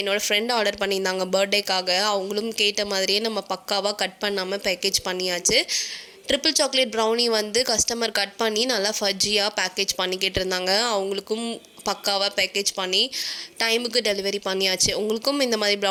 என்னோடய ஃப்ரெண்ட் ஆர்டர் பண்ணியிருந்தாங்க பர்த்டேக்காக. அவங்களும் கேட்ட மாதிரியே நம்ம பக்காவாக கட் பண்ணாமல் பேக்கேஜ் பண்ணியாச்சு. ட்ரிபிள் சாக்லேட் ப்ரௌனி வந்து கஸ்டமர் கட் பண்ணி நல்லா ஃபஜ்ஜியாக பேக்கேஜ் பண்ணிக்கிட்டு இருந்தாங்க. அவங்களுக்கும் பக்காவாக பேக்கேஜ் பண்ணி டைமுக்கு டெலிவரி பண்ணியாச்சு. உங்களுக்கும் இந்த மாதிரி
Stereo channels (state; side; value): identical; both; correlation 1.00